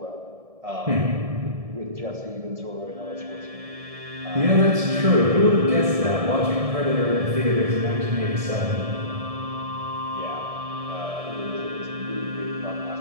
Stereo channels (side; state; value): left; late; 1.7 ms